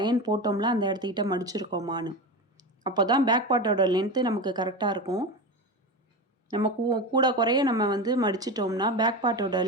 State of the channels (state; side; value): normal; both; correlation 0.22